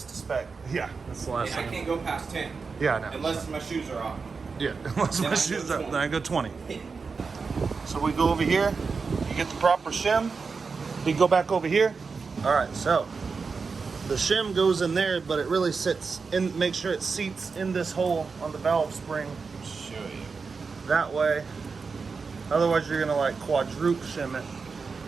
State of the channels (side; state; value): left; quieter; 4.9 dB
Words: to spec. Yeah, that's the last And I thing. can't go past 10. Yeah, I know. Unless my shoes are off. Yeah, unless Then my I go shoes up, 20. then I go 20. So we go over here, you get the proper shim. You go back over here. All right, so the shim goes in there, but it really sits in, make sure it seats in this hole on the valve spring. Show you. That way, otherwise you're gonna like quadruple shim it.